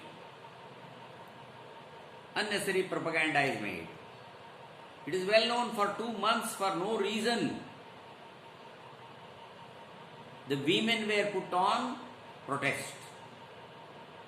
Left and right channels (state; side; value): identical; both; correlation 1.00